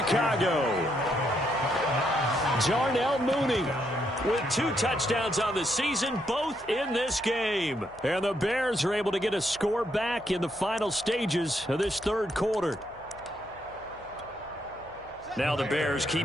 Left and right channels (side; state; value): left; noise; hum, 26 dB below the sound